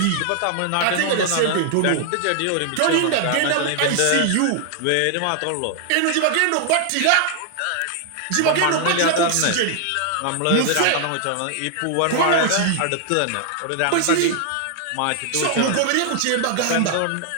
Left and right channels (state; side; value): different; both; correlation 0.00